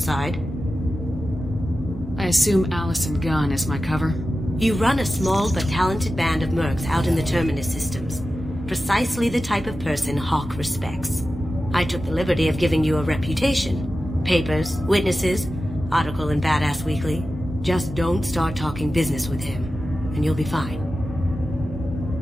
I assume Allison Gunn is my cover? You run a small but talented band of mercs out in the Terminus systems. Precisely the type of person Hawk respects. I took the liberty of giving you a reputation. Papers, witnesses, article in Badass Weekly. Just don't start talking business with him, and you'll be fine.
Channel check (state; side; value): normal; both; correlation 0.93